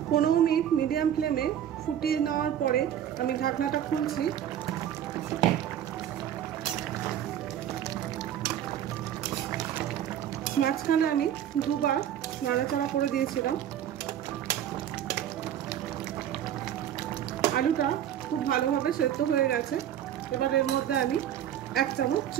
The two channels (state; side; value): quieter; left; 10.4 dB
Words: 15 মিনিট মিডিয়াম ফ্লেমে ফুটিয়ে নেওয়ার পরে আমি ঢাকনাটা খুলছি। মাঝখানে আমি দুবার নাড়াচাড়া করে দিয়েছিলাম। আলুটা খুব ভালোভাবে সেদ্ধ হয়ে গেছে। এবার এর মধ্যে আমি 1 চামচ